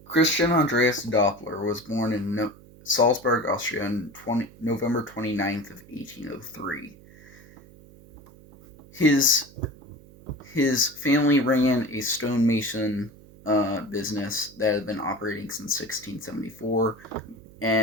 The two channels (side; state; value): right; noise; hum, 22 dB below the sound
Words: Christian Andreas Doppler was born in Salzburg, Austria on November 29th of 1803. His his family ran a stonemason business that had been operating since 1674,